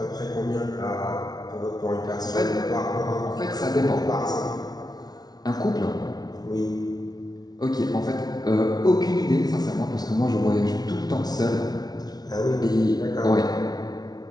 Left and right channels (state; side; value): late; right; 0.19 ms